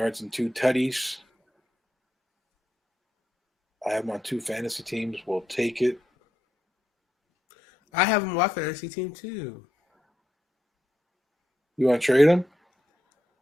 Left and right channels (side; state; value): both; normal; correlation 0.83